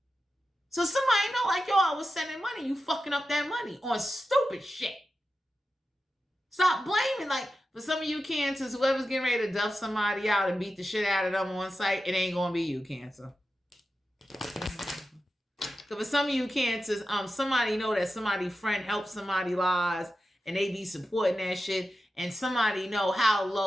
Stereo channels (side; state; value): both; normal; correlation 0.91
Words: So somebody know, like, yo, I was sending money. You fucking up that money on stupid shit. Stop blaming. Like, for some of you cancers, whoever's getting ready to duff somebody out and beat the shit out of them on site, it ain't gonna be you, Cancer. So for some of you cancers, somebody know that somebody friend helped somebody lives and they be supporting that shit, and somebody know how